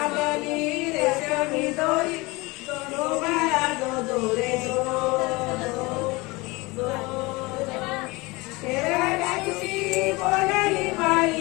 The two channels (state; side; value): quieter; right; 23.9 dB